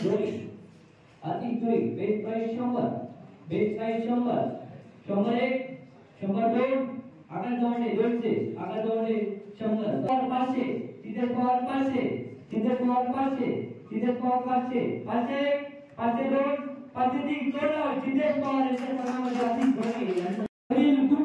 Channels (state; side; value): identical; both; correlation 1.00